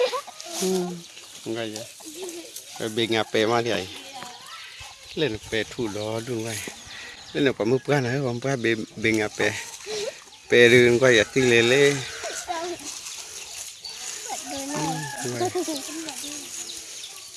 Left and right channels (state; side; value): identical; both; correlation 1.00